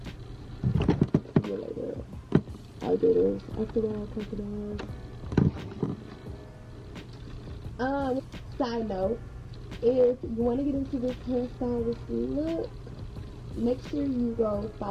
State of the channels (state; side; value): identical; both; correlation 1.00